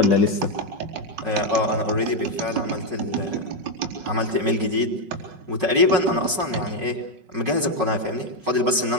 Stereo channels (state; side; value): late; left; 5.4 ms